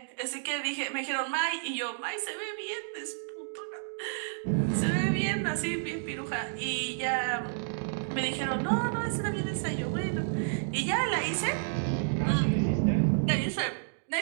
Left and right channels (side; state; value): left; silent; digital silence